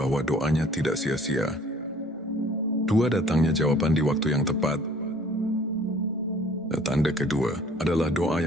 doanya tidak sia-sia. Dua, datangnya jawaban di waktu yang tepat. Tanda kedua adalah doa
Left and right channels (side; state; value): both; normal; correlation 0.53